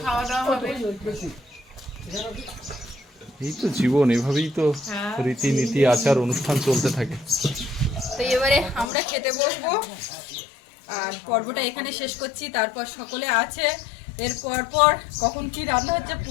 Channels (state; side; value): drops out; right; at 8.9 s